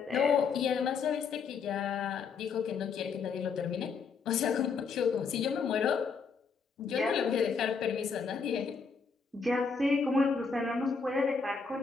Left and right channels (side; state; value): right; quieter; 5.4 dB